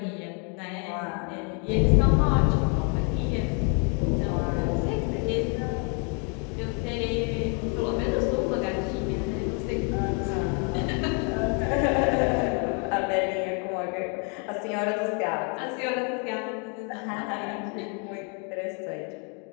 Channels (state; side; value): quieter; right; 37.6 dB